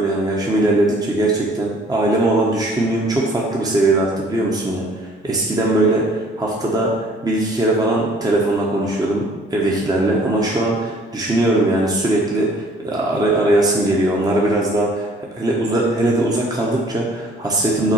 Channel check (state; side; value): normal; both; correlation 0.56